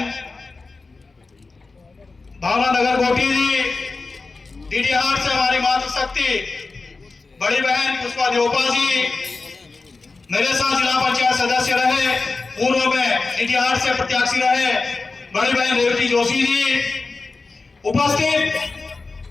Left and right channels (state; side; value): quieter; right; 3.9 dB